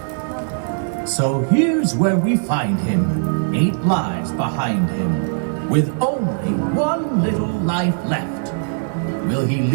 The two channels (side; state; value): left; silent; digital silence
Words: So here's where we find him, 8 lives behind him, with only 1 little life left. Will he